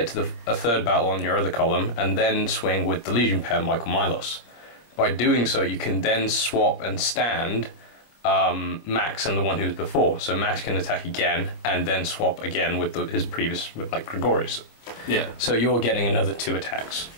to a 3rd battle on your other column, and then swing with the Legion pair, Michael Milos. By doing so, you can then swap and stand Max and the one who was before. So Max can attack again, and then swap again with his previous, with like Gregorius. Yeah. So you're getting another 2 attacks.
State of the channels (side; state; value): right; late; 26 ms